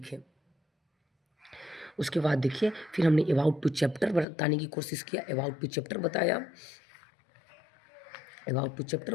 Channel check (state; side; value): drops out; right; at 4.2 s